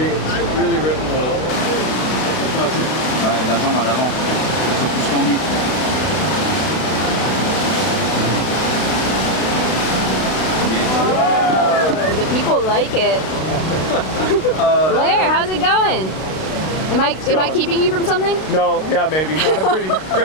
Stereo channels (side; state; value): right; late; 32 ms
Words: really rippable. Ouais, l'avant, à l'avant. Un peu plus tendu. The people like it. Blair, how's it going? Am I keeping you from something? No, yeah, maybe. I'm having